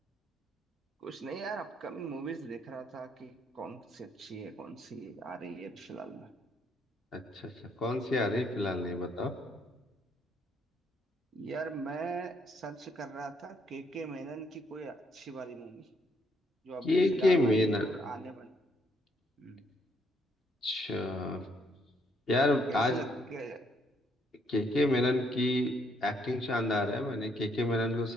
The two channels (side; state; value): both; normal; correlation 0.71